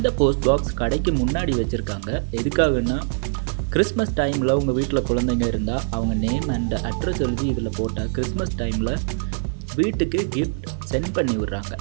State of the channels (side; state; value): left; silent; digital silence